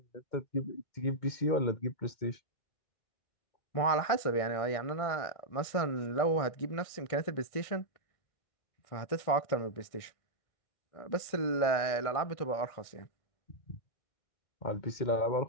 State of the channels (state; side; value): late; right; 1.6 ms